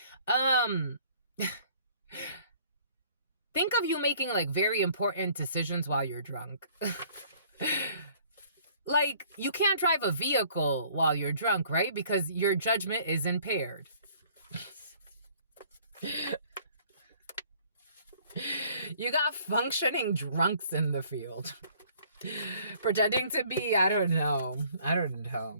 Think of you making like very important decisions while you're drunk. Like, you can't drive a vehicle while you're drunk, right? Because your judgment is impaired. You got functioning drunks in the field. Pretending to be, I don't know.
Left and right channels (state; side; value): inverted; both; correlation -0.57